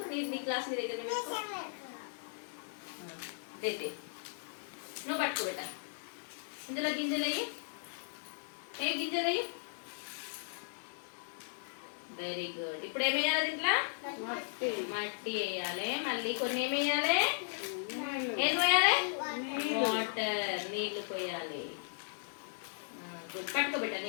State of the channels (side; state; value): right; silent; digital silence